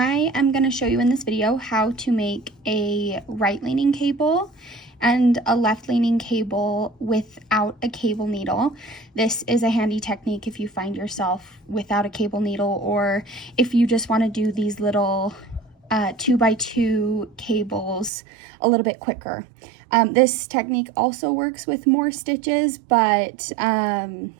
am going to show you in this video how to make a right-leaning cable and a left-leaning cable without a cable needle. This is a handy technique if you find yourself without a cable needle, or if you just want to do these little 2x2 cables a little bit quicker. This technique also works with more stitches, but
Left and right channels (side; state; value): left; drops out; at 18.1 s